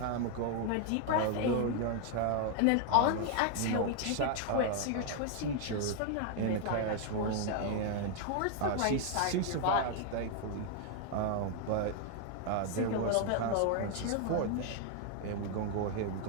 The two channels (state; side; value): different; both; correlation 0.00